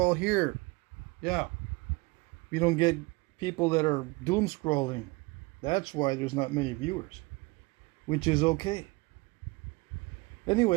here. Yeah, we don't get people that are doom scrolling. That's why there's not many viewers, which is okay.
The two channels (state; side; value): quieter; left; 25.4 dB